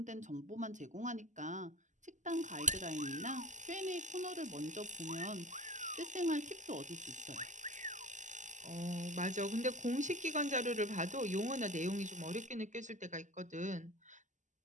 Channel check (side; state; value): left; late; 0.36 ms